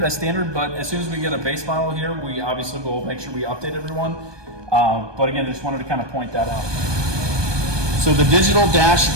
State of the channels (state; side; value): late; left; 1.2 ms